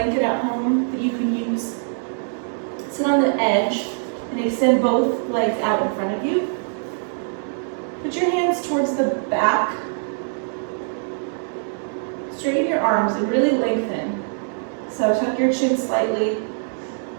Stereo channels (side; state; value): left; silent; digital silence